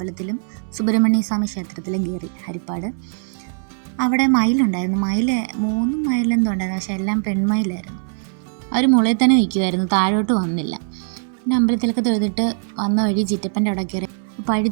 സുബ്രഹ്മണ്യ സ്വാമി ക്ഷേത്രത്തിലും കയറി. ഹരിപ്പാട് അവിടെ മയിലുണ്ടായിരുന്നു. 3 മയിലെന്തോ ഉണ്ടായിരുന്നു, പക്ഷെ എല്ലാം പെൺമയിലായിരുന്നു. അവർ മുളയിൽ തന്നെ നിൽക്കുമായിരുന്നു, താഴോട്ട് വന്നില്ല. പിന്നെ അമ്പലത്തിലൊക്കെ തൊഴുതിട്ട് വന്ന വഴി ചിറ്റപ്പൻ്റെ അവിടെ കയറി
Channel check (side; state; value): left; silent; 65 dB below the other